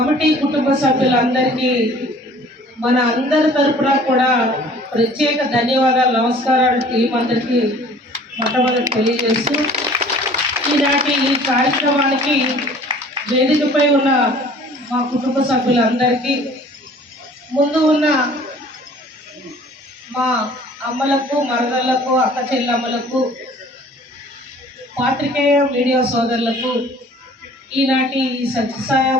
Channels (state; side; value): normal; both; correlation 0.51